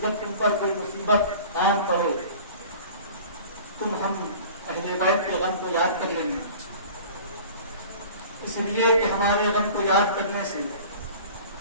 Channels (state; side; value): inverted; both; correlation -0.43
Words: جب تم پر کوئی مصیبت قائم پڑے تم ہم اہل بیت کے غم کو یاد کر لینا، اس لیے کہ ہمارے غم کو یاد کرنے سے